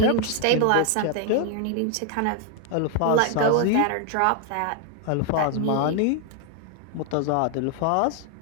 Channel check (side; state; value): both; different; correlation 0.00